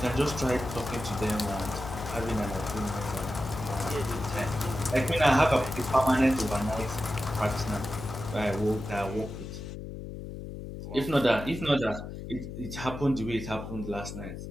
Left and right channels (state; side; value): noise; left; hum, 9 dB below the sound